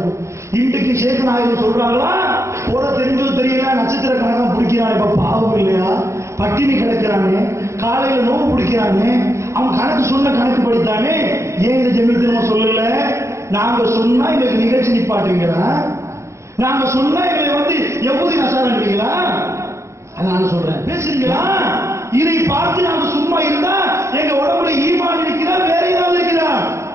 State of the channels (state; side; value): late; left; 0.14 ms